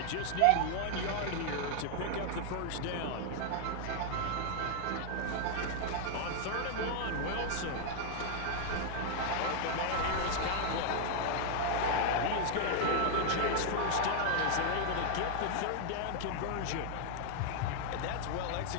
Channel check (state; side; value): different; both; correlation 0.00